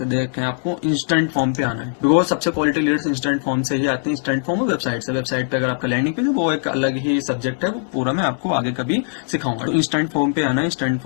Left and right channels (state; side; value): silent; right; digital silence